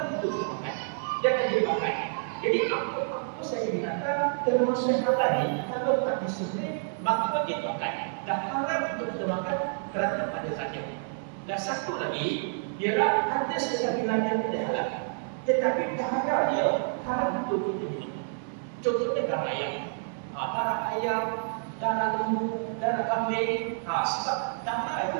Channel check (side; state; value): left; silent; 59 dB below the other